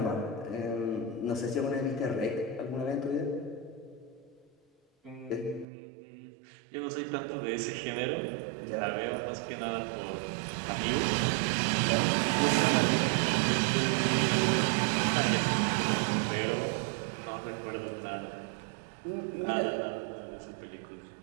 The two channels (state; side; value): drops out; left; at 5.7 s